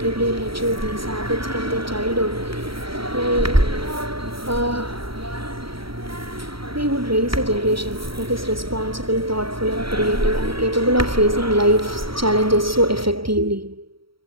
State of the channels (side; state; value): left; late; 0.75 ms